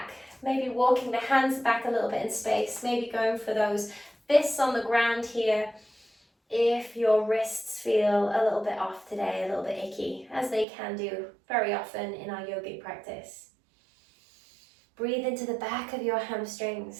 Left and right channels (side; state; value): left; drops out; at 10.7 s